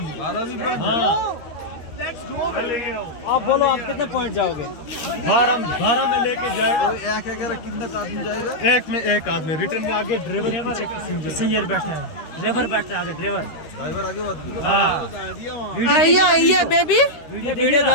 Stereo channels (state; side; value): late; right; 13 ms